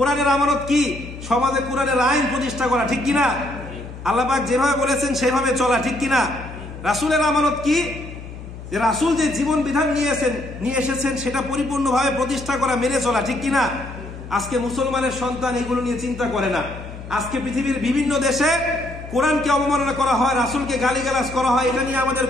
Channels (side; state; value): left; noise; hum, 12 dB below the sound